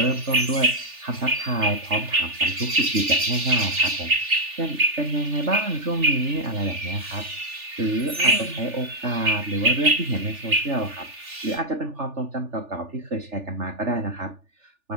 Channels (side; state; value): left; late; 3.4 ms